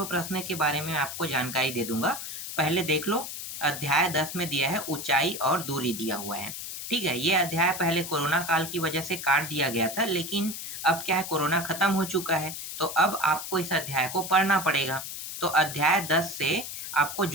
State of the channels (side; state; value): left; noise; hiss, 8 dB below the sound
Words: प्रश्न के बारे में आपको जानकारी दे दूंगा। पहले देख लो, अध्याय 10 में दिया है ऊंचाई और दूरी दिया हुआ है। ठीक है, ये अध्याय पहले कोरोना काल की वजह से काट दिया गया था, लेकिन अब क्या है, कोरोना खत्म हो चुका है, तो अब आपको इस अध्याय को पढ़ना पड़ेगा। तो अध्याय 10 से आपको